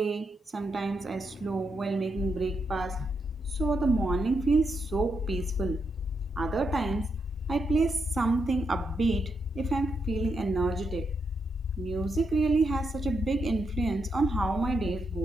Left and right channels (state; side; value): normal; both; correlation 0.82